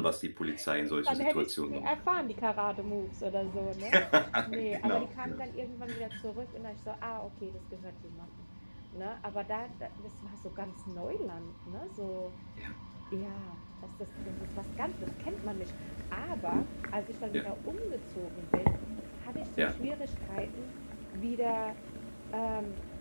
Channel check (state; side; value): inverted; both; correlation -1.00